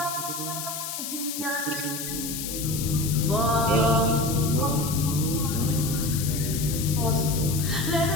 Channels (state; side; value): noise; left; hiss, 6 dB below the sound